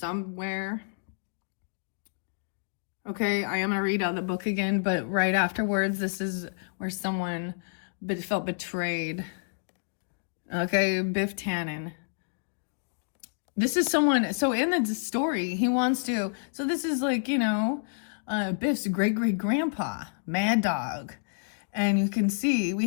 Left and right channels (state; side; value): silent; right; digital silence